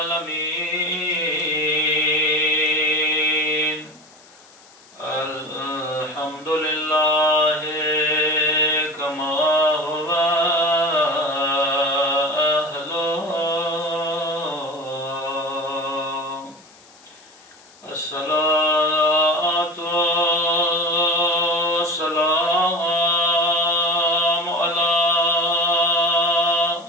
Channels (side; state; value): left; noise; hiss, 26 dB below the sound